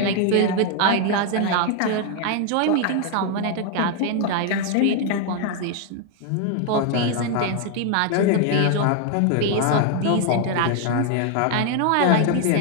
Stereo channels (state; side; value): different; both; correlation 0.00